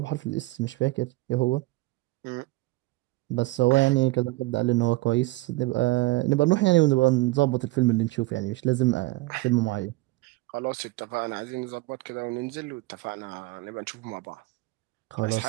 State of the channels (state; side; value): quieter; left; 20.7 dB